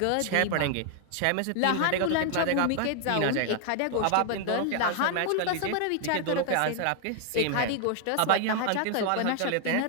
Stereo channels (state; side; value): different; both; correlation 0.00